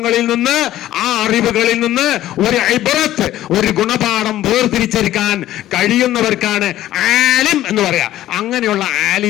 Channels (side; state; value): right; quieter; 13.8 dB